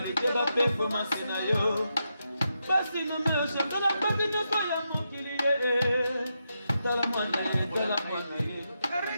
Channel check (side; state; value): both; inverted; correlation -0.84